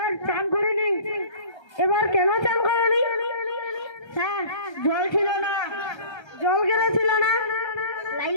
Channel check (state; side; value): late; right; 1.3 ms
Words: চান করিনি। এবার কেন চান করনি? স্যার জল ছিল না। জল কেন ছিল না?